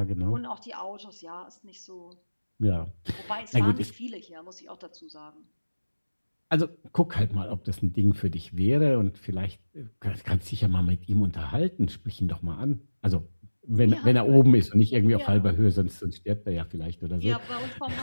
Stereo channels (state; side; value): inverted; both; correlation -1.00